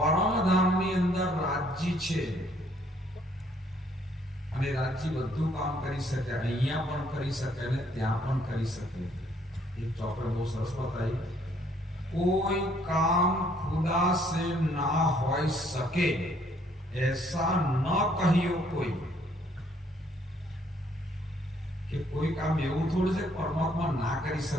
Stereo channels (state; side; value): normal; both; correlation 0.65